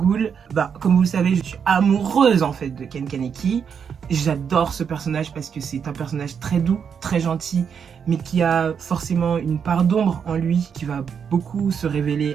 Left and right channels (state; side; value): quieter; left; 7.1 dB